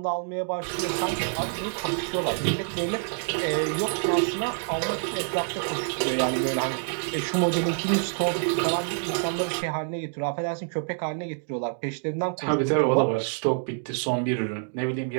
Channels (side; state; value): left; silent; 60 dB below the other